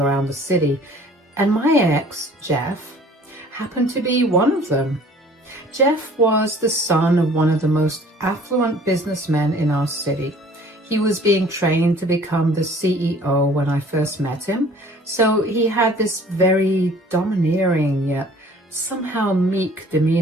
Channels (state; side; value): normal; both; correlation 0.52